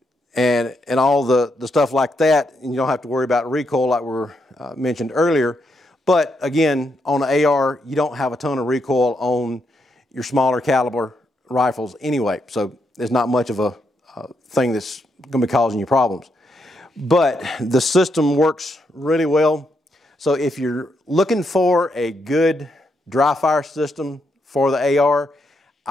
and all the stuff like that, and you don't have to worry about recoil like we mentioned earlier. But again, on an AR, you don't have a ton of recoil on your smaller caliber rifles anyway, so there's not much of a thing that's going to be causing you problems. But the system works really well. So if you're looking for a good dry fire system for the AR,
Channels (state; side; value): normal; both; correlation 0.80